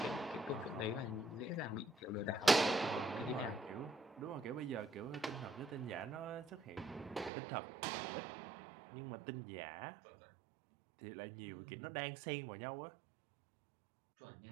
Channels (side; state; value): left; drops out; at 7.3 s